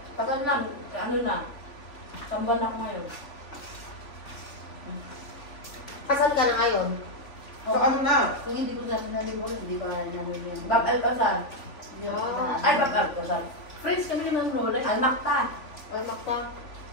Tagal na, ano na, samban ako ngayon. Kasal ka na ngayon? So ano na? Kung hindi ko sabi na libor, hindi ko nalibor. Bab Alcazar. Ay, Bab Alcazar. Friends kami ng Lola. Almakta. Makta.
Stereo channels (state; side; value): late; right; 3.5 ms